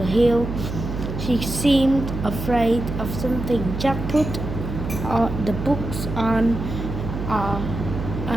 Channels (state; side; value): noise; right; hum, 6 dB below the sound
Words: hill. She seemed afraid of something. Jack put the books on